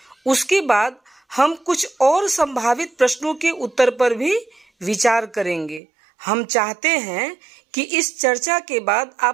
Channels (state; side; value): drops out; left; at 5.8 s